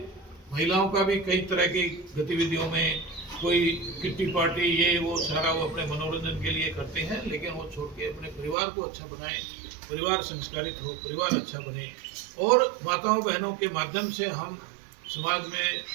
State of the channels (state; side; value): drops out; left; at 8.6 s